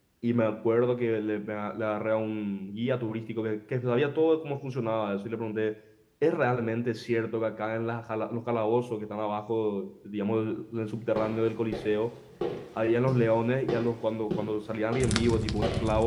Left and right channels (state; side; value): identical; both; correlation 1.00